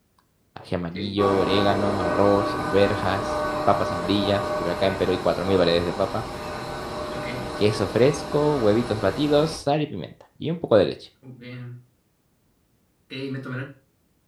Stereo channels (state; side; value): identical; both; correlation 1.00